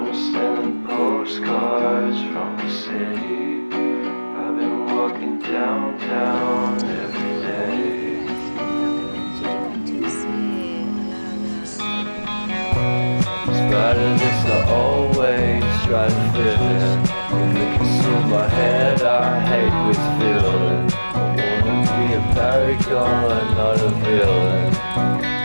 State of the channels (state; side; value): inverted; both; correlation -1.00